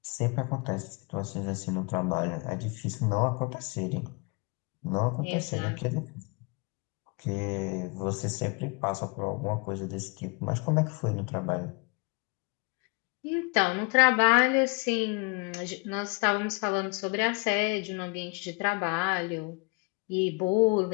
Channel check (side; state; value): right; quieter; 31.5 dB